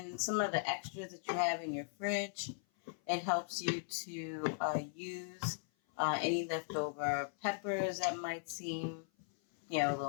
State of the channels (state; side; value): silent; right; 52 dB below the other